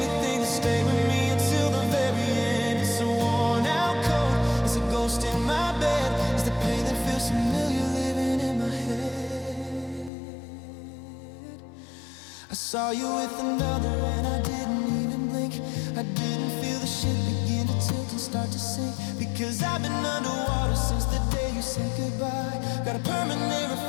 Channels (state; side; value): drops out; right; at 10.1 s